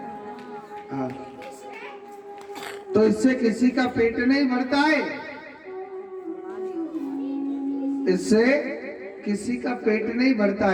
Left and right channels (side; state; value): both; identical; correlation 1.00